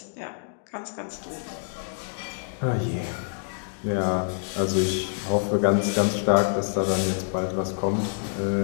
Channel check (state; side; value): silent; right; digital silence